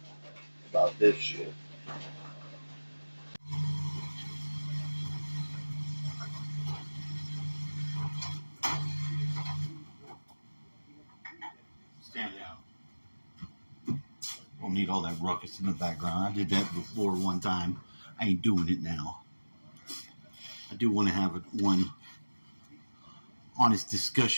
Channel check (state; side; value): inverted; both; correlation -1.00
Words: about this shit. Stand down. Don't need all that ruckus in the background. I did that before one time. I ain't doing it now. I do want to have one honest